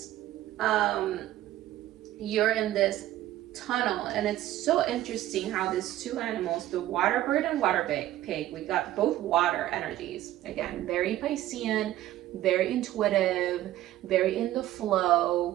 You're in this tunnel, and it's so interesting how these two animals, the water bird and water pig, we got both water energies. Again, very Piscean, very intuitive, very in the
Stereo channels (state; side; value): quieter; left; 14.3 dB